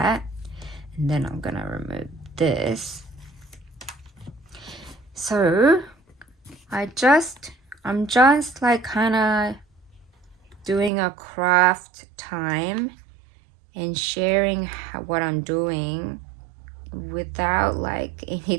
and then I'm gonna remove this. So I'm just like kind of doing a craft time and sharing what I'm doing without like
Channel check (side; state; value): left; drops out; at 10.9 s